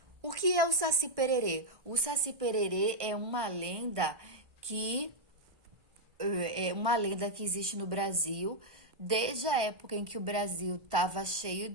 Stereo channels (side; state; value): left; late; 1.5 ms